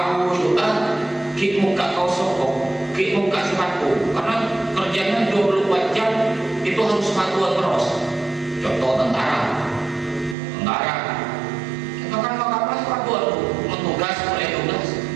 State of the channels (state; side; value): drops out; left; at 10.4 s